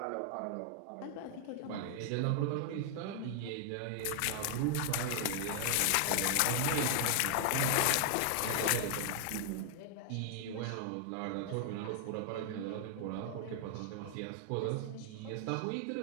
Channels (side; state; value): both; different; correlation 0.00